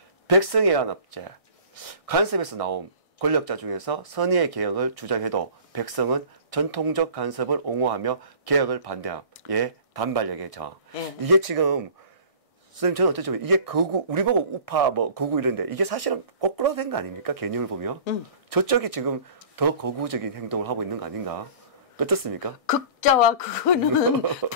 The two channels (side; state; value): right; late; 1.6 ms